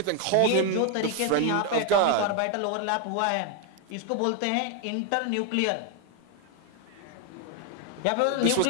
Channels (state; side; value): different; both; correlation 0.01